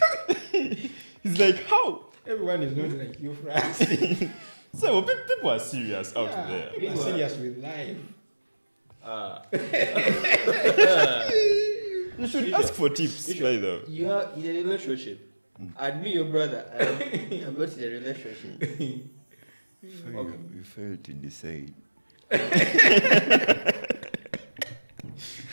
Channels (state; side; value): inverted; both; correlation -1.00